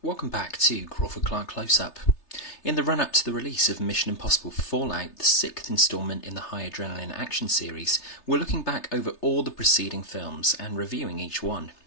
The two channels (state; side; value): late; right; 3.3 ms